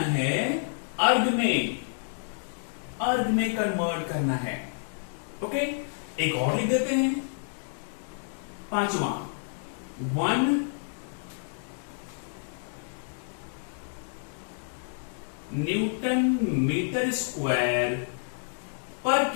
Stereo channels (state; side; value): silent; right; digital silence